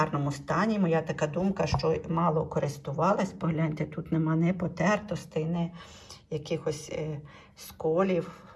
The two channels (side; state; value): both; identical; correlation 1.00